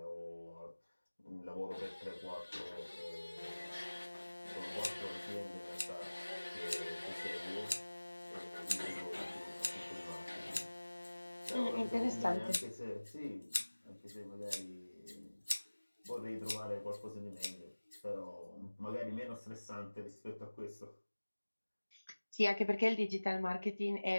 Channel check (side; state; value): both; inverted; correlation -1.00